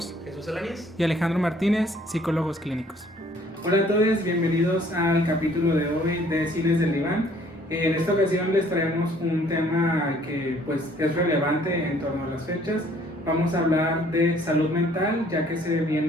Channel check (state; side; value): normal; both; correlation 0.59